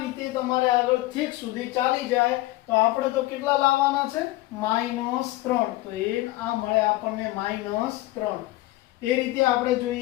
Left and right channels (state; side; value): quieter; right; 18.2 dB